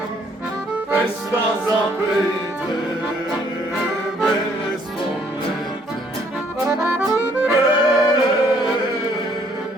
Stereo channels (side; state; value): both; normal; correlation 0.65